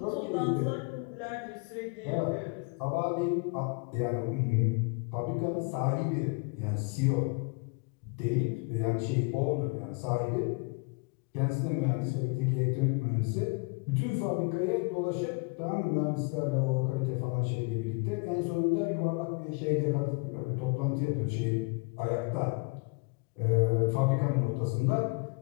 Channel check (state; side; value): quieter; right; 32.3 dB